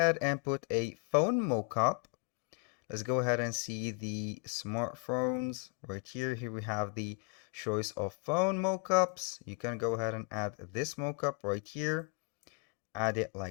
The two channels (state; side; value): quieter; right; 35.4 dB